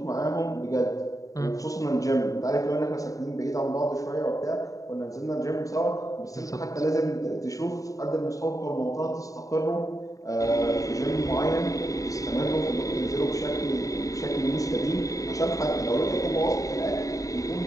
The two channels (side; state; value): right; late; 0.16 ms